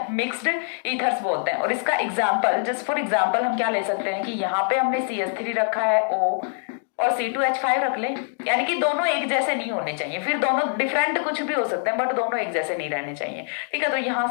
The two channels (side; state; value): right; silent; digital silence